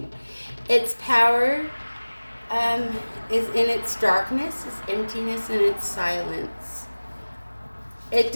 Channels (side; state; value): both; inverted; correlation -1.00